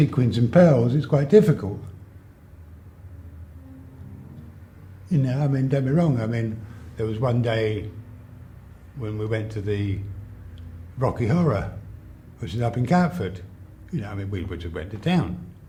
and pearls, it's quite difficult. You know, I mean, don't be wrong, I mean, there was one day when we went to the Rocky Horror, which is up in Catford. You know, I mean, we just went to town.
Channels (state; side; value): identical; both; correlation 1.00